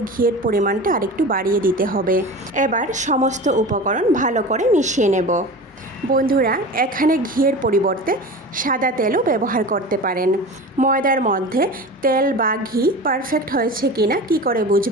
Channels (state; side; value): normal; both; correlation 0.32